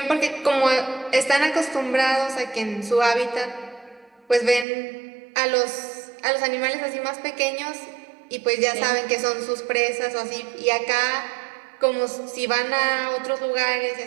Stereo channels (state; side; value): drops out; left; at 4.7 s